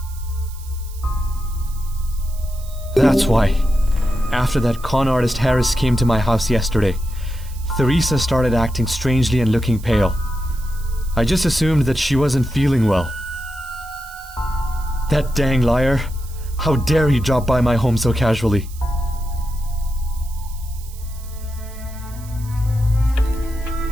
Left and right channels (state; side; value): noise; right; hiss, 20 dB below the sound